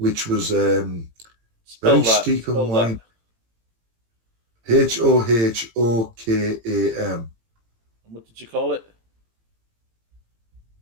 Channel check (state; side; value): late; left; 18 ms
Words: was very steep and winding. Hohokam. What did you call it?